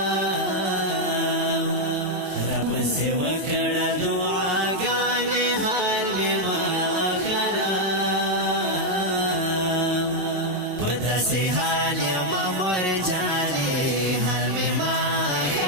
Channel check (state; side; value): late; left; 21 ms